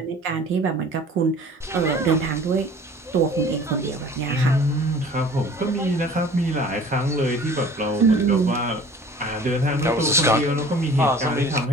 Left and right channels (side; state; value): both; normal; correlation 0.47